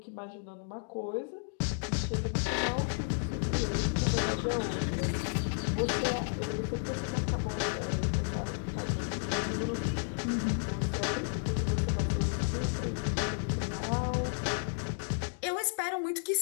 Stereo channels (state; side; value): silent; right; digital silence